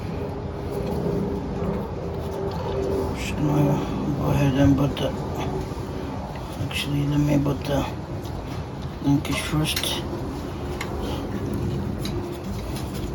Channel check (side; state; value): both; identical; correlation 1.00